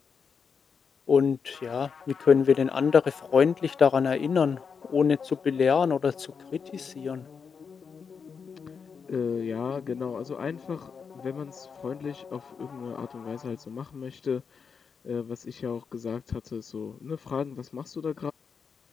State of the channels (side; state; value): right; quieter; 6.0 dB